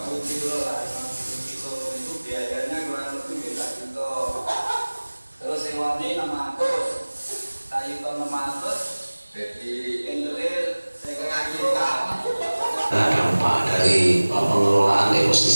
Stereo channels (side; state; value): both; inverted; correlation -1.00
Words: kilo lah, 50 kilo itu biayanya kurang lebih beda juta. Terus sewanya 600, kayu ton 600, Jadi endelil setengah kintal. Dampak dari pengelolaan